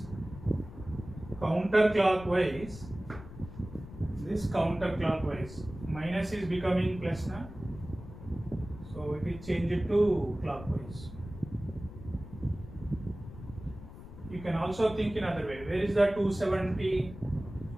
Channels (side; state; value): left; noise; rumble, 14 dB below the sound